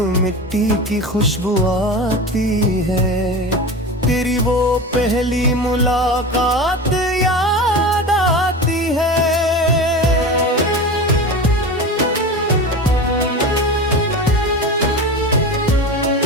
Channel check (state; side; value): normal; both; correlation 0.28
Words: मिट्टी की खुशबू आती है, तेरी वो पहली मुलाकात याद आती है।